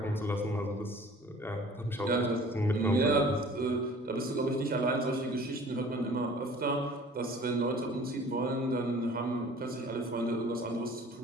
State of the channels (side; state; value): both; normal; correlation 0.48